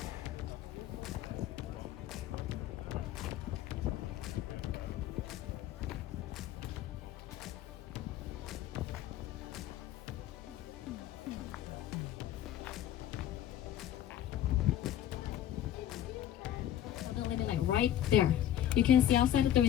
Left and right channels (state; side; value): quieter; right; 11.5 dB